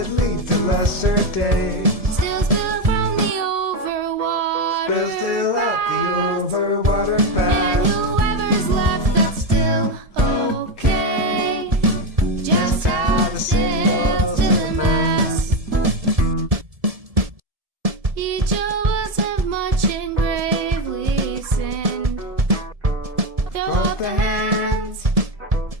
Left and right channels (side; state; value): left; late; 1.7 ms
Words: lead to lesser days. Still spill from the overwater. Still out the overwater And path. whoever's left, that's still okay. Just add the sails to the mast. Each of us have much and gravely sinned. Throw up the hands,